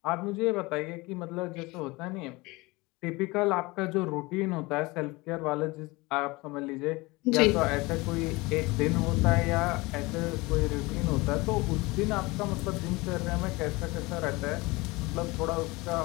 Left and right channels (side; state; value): right; quieter; 23.2 dB